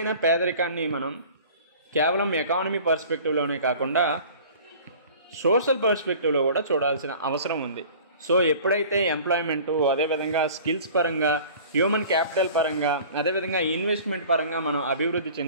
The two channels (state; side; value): inverted; both; correlation -0.45